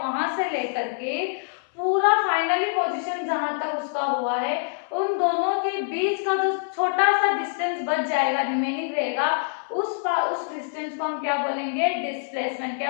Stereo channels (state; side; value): silent; right; 61 dB below the other